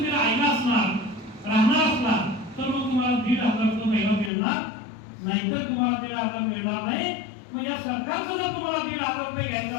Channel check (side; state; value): right; drops out; at 4.3 s